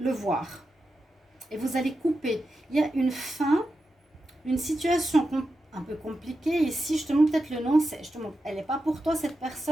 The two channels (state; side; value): normal; both; correlation 0.89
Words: voir. Et vous allez couper. Il y a une fin, une situation un peu compliquée. Ici, justement, peut-être le nom, c'est justement, elle n'est pas pour toi, cette